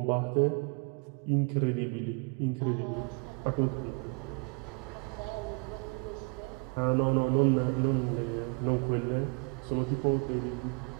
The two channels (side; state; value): left; quieter; 32.5 dB